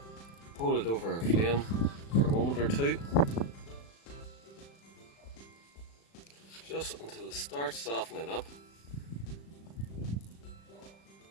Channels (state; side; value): late; right; 36 ms